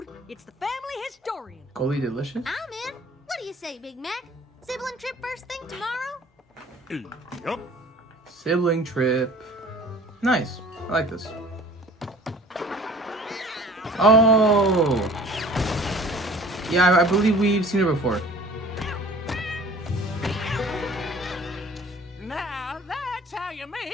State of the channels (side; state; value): both; normal; correlation 0.48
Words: it's the family historian. Goldie Delicious? I'm in. What do you say, Big Mac? Sibling trip first thing tomorrow? Yep. Sibling trip. Nice. I like this. Oh. Yeah, I believe we've seen her before. Now that's how you